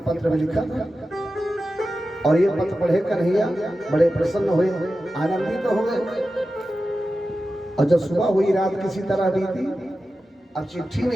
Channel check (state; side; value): normal; both; correlation 0.93